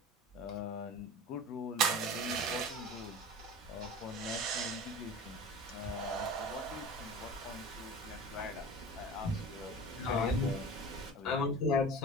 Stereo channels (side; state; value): both; normal; correlation 0.35